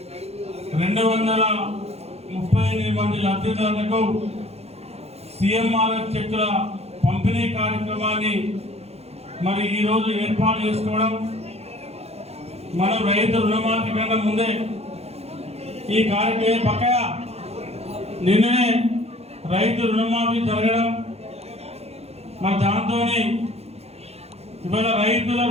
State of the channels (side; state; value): left; late; 0.30 ms